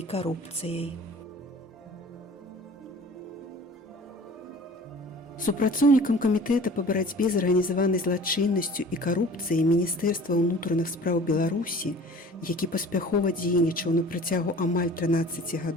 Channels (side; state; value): both; normal; correlation 0.45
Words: Супрацоўнікам камітэта па барацьбе з арганізаванай злачыннасцю і карупцыяй Міністэрства ўнутраных спраў Беларусі, які паспяхова дзейнічаў на працягу амаль 13